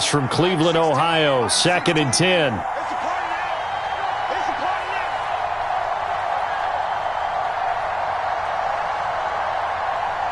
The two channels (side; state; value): both; identical; correlation 1.00